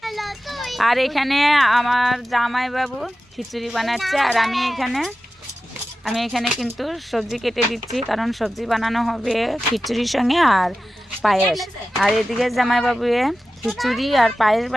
আর এখানে আমার জামাইবাবু খিচুড়ি বানাচ্ছে, আর আমি এখানে কিন্তু সবজি কেটে দিচ্ছি, কারণ সবজি বানানো হবে খিচুড়ির সঙ্গে আর পায়েস। আর এদিকে জামাইবাবু খিচুড়ি আর পায়েস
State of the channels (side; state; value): both; normal; correlation 0.94